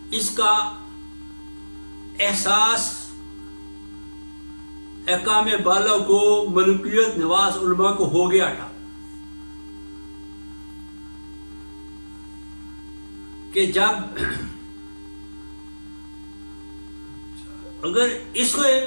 اس کا احساس احکام بالا کو، ملکیت نواز علماء کو ہو گیا تھا کہ جب اگر اس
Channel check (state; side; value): inverted; both; correlation -1.00